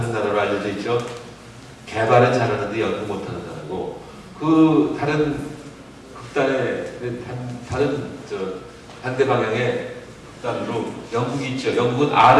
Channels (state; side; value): identical; both; correlation 1.00